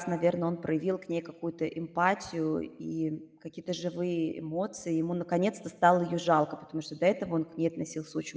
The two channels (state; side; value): identical; both; correlation 1.00